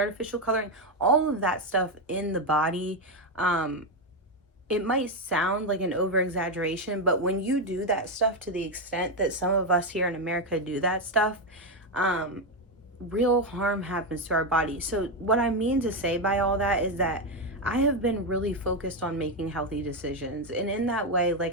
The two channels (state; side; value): normal; both; correlation 0.07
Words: coloring, all of that stuff in the body. It might sound like an over exaggeration, but when you do that stuff to the extent that some of us here in America do that stuff, real harm happens to our body. So what I mean to say by all that is that I have been really focused on making healthy decisions. And in that way,